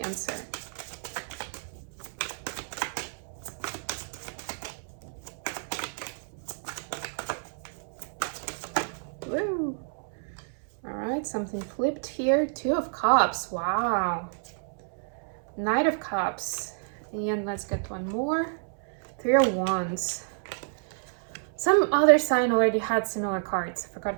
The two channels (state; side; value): silent; left; 58 dB below the other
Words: Cancer. Woo. All right, something flipped here. 2 of Cups. Wow. Knight of Cups. And let's get one more. 3 of Wands. Some other sign already had similar cards. I forgot